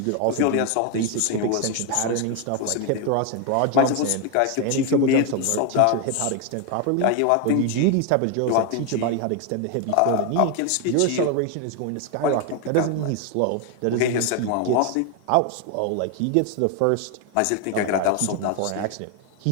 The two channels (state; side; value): different; both; correlation 0.01